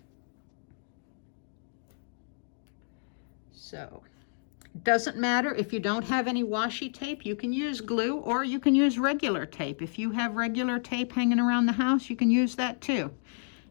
So it doesn't matter if you don't have any washi tape, you can use glue or you can use regular tape. If you have regular tape hanging around the house, you can use that too.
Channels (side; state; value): right; silent; digital silence